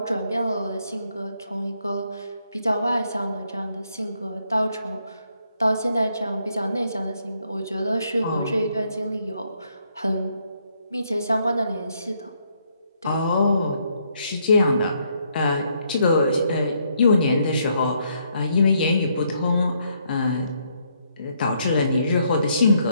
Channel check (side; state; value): both; inverted; correlation -0.73